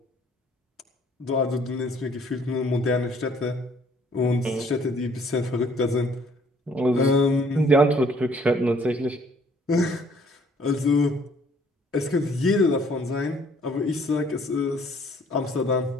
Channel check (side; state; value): both; normal; correlation 0.60